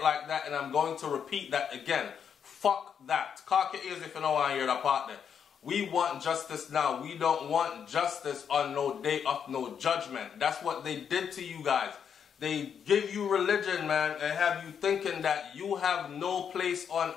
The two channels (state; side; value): quieter; right; 7.6 dB